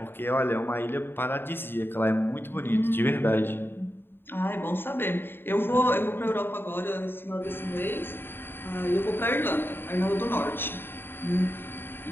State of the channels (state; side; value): late; right; 0.10 ms